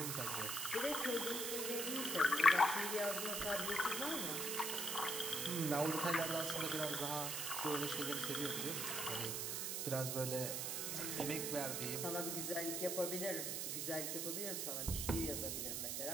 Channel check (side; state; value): right; noise; hiss, 1 dB below the sound